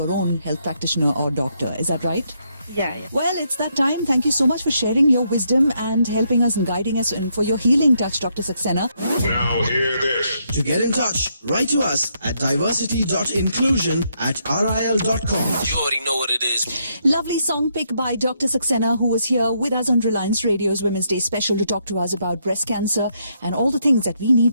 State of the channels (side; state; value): both; inverted; correlation -0.76